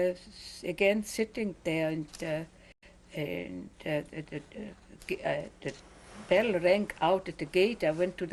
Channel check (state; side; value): identical; both; correlation 1.00